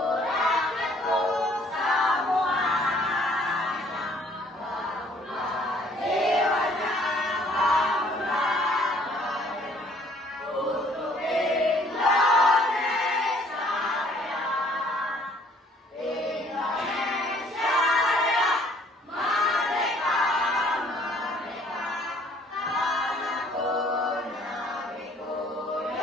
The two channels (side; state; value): both; normal; correlation 0.60